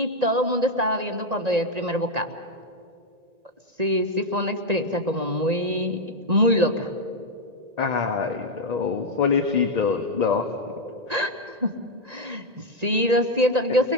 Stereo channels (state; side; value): late; left; 1.9 ms